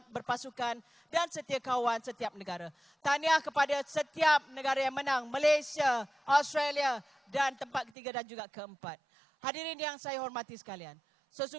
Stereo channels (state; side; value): drops out; left; at 7.9 s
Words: berpasukan dan setia kawan setiap negara. Tahniah kepada setiap negara yang menang, Malaysia, Australia dan tempat ketiga dan juga keempat. Hadirin yang saya hormati sekalian,